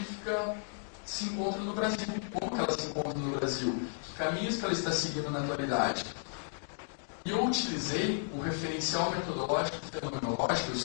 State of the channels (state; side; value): silent; right; digital silence